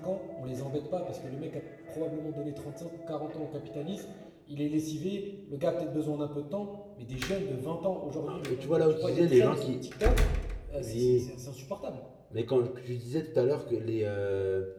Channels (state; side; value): identical; both; correlation 1.00